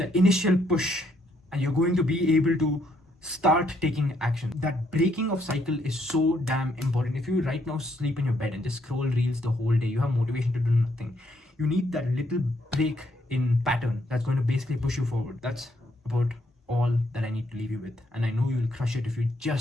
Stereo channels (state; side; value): normal; both; correlation 0.72